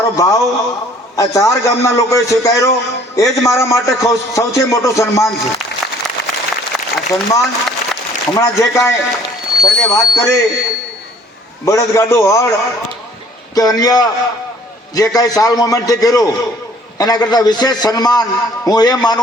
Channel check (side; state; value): both; normal; correlation 0.57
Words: ભાવ આ 4 ગામના લોકોએ સ્વીકાર્યો. એ જ મારા માટે સૌથી મોટું સન્માન છે. આ સન્માન હમણાં જે કાંઈ સર્વે વાત કરી બળદગાડું હળ કે અન્ય જે કાંઈ સાલ મોમેન્ટથી કર્યું એના કરતાં વિશેષ સન્માન હું એ